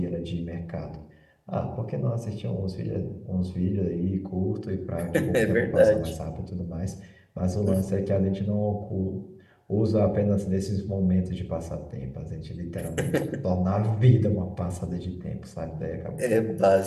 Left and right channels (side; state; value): both; identical; correlation 1.00